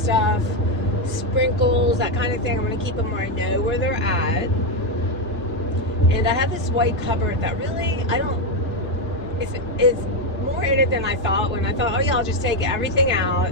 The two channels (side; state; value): both; normal; correlation 0.06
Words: sprinkles, that kind of thing. I'm going to keep them where I know where they're at. And I have this white cupboard that really, it's more in it than I thought. When I thought, oh yeah, I'll just take everything out